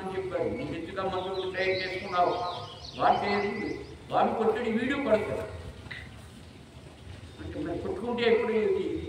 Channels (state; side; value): identical; both; correlation 1.00